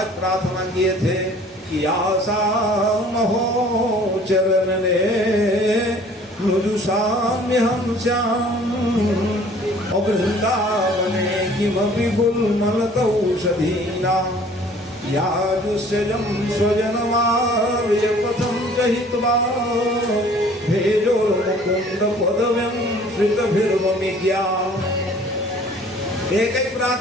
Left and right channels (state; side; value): normal; both; correlation 0.52